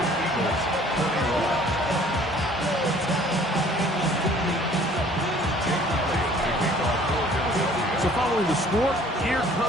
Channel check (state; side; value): normal; both; correlation 0.54